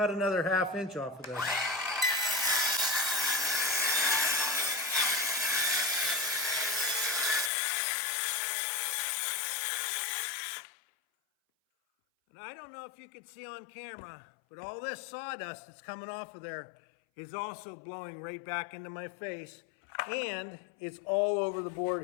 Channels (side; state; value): right; drops out; at 7.5 s